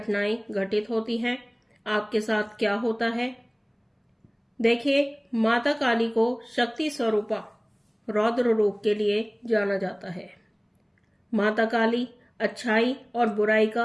घटित होती हैं, आपके साथ क्या होता है। देखिए, माता काली को शक्ति स्वरूपा रौद्र रूप के लिए जाना जाता है। माता काली अच्छाई और बुराई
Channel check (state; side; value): identical; both; correlation 1.00